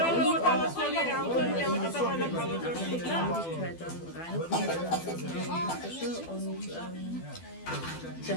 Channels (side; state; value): right; late; 12 ms